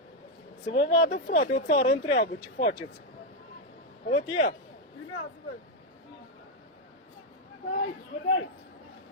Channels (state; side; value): normal; both; correlation 0.02